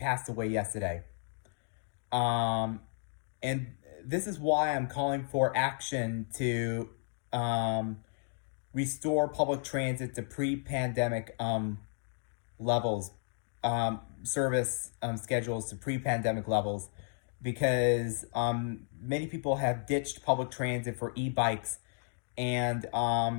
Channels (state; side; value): silent; right; digital silence